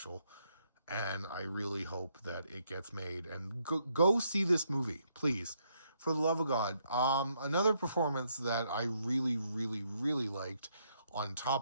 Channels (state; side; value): inverted; both; correlation -0.74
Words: and I really hope that it gets made. And go see this movie, please, for the love of God. Another performance that I really, really, really liked, on